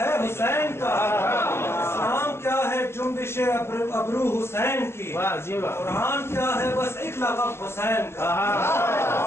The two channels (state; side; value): late; right; 0.12 ms